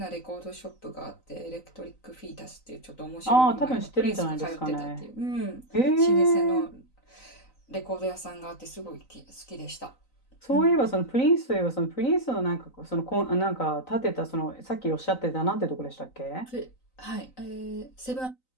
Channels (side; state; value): right; late; 3.9 ms